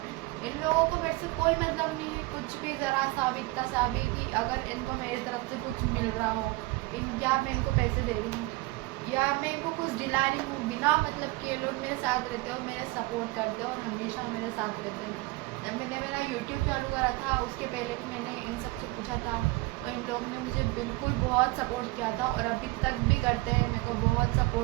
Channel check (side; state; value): left; quieter; 21.9 dB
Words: इन लोगों को मेरे से कोई मतलब नहीं है, कुछ भी ज़रा सा भी इतना सा भी कि अगर इनको मेरी तरफ से कुछ मिल रहा हो, या मैं इनको पैसे दे रही हूँ या मैं इनको कुछ दिला रही हूँ, बिना मतलब के लोग मेरे साथ रहते हैं और मेरे सपोर्ट करते हैं और हमेशा मेरे साथ रहते हैं। जब मैंने मेरा यूट्यूब चालू करा था उसके पहले भी मैंने इन सबसे पूछा था, तो इन लोगों ने मुझे बिल्कुल बहुत सपोर्ट किया था और अभी तक भी करते हैं, मेरे को बहुत